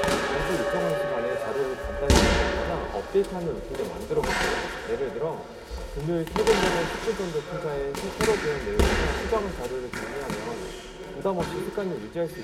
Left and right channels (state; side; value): identical; both; correlation 1.00